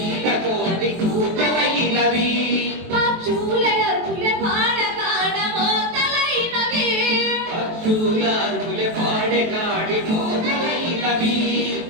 కోడి కూతలైనవి పక్షులే అరుపులే పాడకాడ మోతలైనవి పక్షుల అరుపులే పాడకాడి మోతలైనవి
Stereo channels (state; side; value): late; left; 23 ms